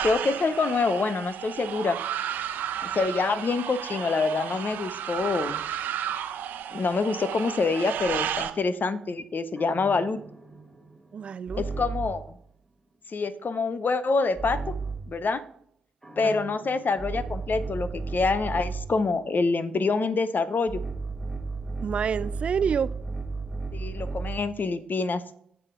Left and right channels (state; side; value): normal; both; correlation 0.75